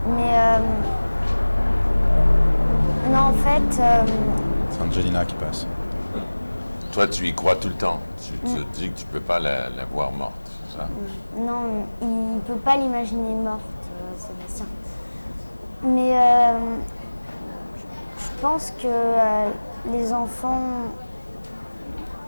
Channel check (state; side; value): inverted; both; correlation -1.00